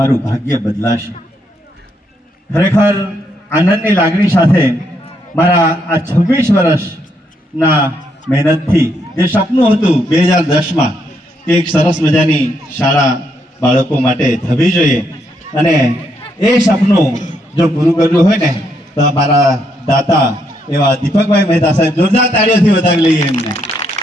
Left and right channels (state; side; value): normal; both; correlation 0.76